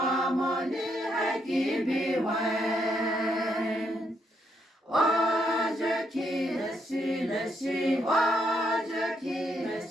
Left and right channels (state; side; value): normal; both; correlation 0.77